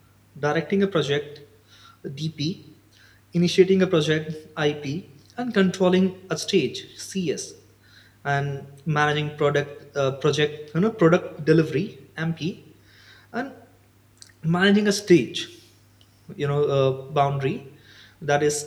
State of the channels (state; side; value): identical; both; correlation 1.00